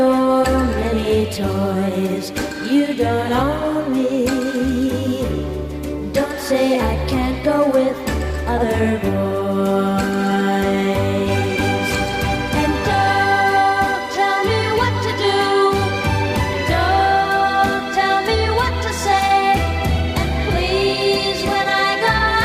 many toys. You don't own me. Don't say I can't go with other boys. And don't tell me what to do. Don't tell me what to say. And please, when I go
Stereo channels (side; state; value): both; identical; correlation 1.00